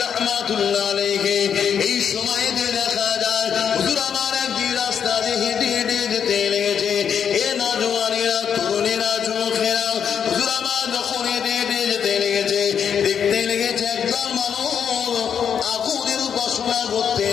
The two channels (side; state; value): right; quieter; 7.8 dB